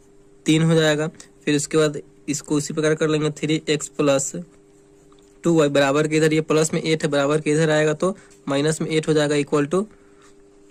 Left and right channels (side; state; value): both; identical; correlation 1.00